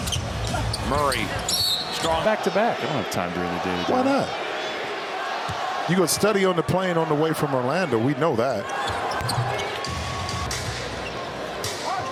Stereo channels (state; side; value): identical; both; correlation 1.00